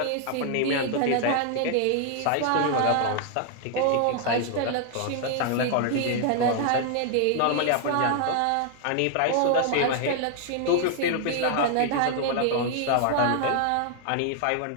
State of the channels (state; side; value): different; both; correlation 0.00